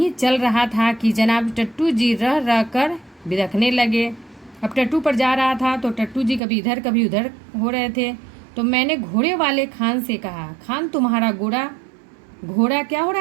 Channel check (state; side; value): drops out; left; at 6.4 s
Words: चल रहा था कि जनाब टट्टू जी रह रह कर बिदखने लगे। अब टट्टू पर जा रहा था तो टट्टू जी कभी इधर कभी उधर हो रहे थे। तो मैंने घोड़े वाले खान से कहा, खान तुम्हारा घोड़ा क्या हो